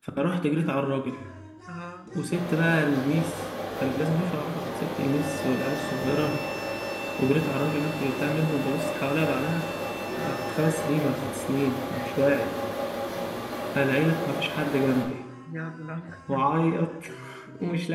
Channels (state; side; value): identical; both; correlation 1.00